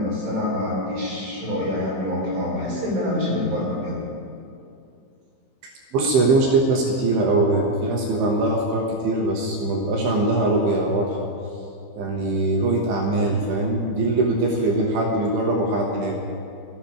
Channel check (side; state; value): left; late; 15 ms